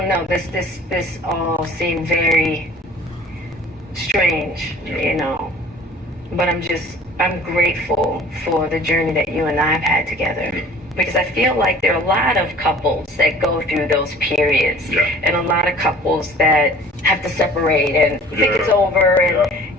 know, this all seemed very strange, but I'm grateful for the journey that you and I have had together. Because I feel like there are a lot of couples that go through those periods, and a lot of couples that have to separate and think it's over.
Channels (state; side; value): normal; both; correlation 0.48